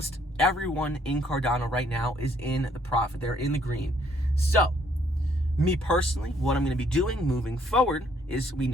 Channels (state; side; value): normal; both; correlation 0.66